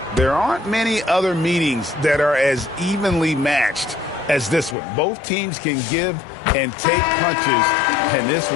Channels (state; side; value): drops out; right; at 4.8 s